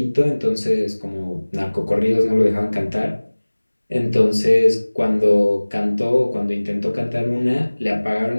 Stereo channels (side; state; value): both; inverted; correlation -1.00